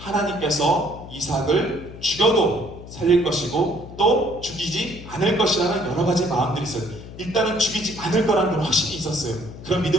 이삭을 죽여도 살릴 것이고 또 죽이지 않을 것이라는 여러 가지 마음들이 있어요. 일단은 죽이지 않을 거라는 건 확신이 있었어요. 그런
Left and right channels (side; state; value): left; noise; hum, 14 dB below the sound